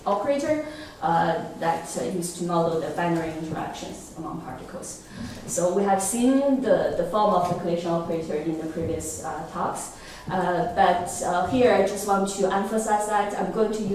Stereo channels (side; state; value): both; identical; correlation 1.00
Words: operator that used to model the binary interactions among particles. So we have seen the form of the collision operator in the previous talks. But here I just want to emphasize that I'm going to